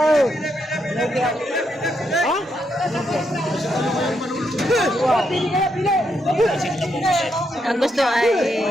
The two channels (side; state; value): both; normal; correlation 0.79